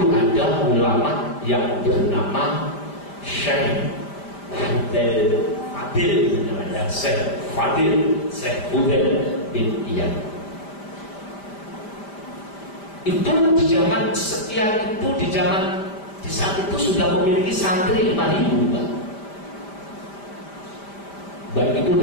ada ulama yang bernama Syekh Fadil namanya, Syekh Fudel bin Iyad. Itu di zaman sekian itu di saat itu sudah memiliki santri 5.000, Pak. Baik itu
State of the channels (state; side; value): late; right; 5.0 ms